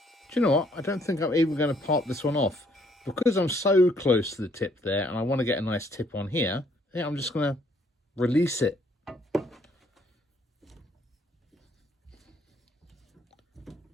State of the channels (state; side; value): normal; both; correlation 0.66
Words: Do you know what? I don't think I'm even going to part this one off. Because I'm so close to the tip there, and I want to get a nice tip on here, I think I'm just going to release it.